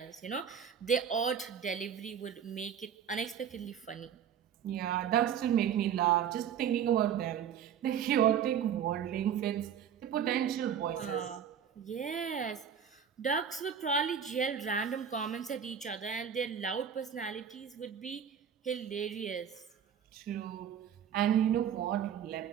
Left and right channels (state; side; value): quieter; left; 8.4 dB